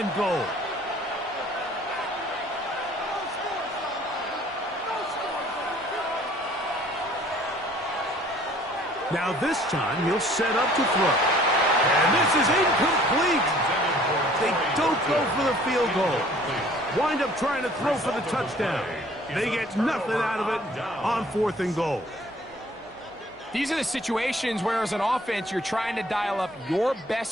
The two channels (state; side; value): noise; right; hum, 28 dB below the sound